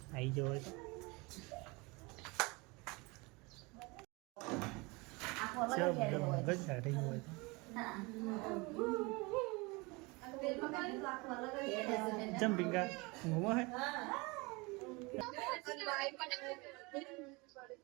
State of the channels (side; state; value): left; quieter; 26.2 dB